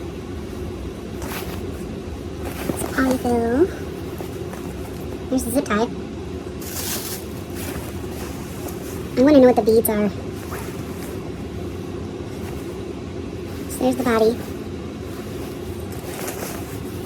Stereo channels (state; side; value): identical; both; correlation 1.00